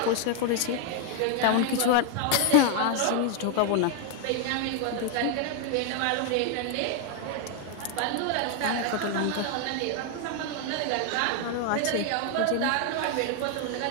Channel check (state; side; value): different; both; correlation 0.01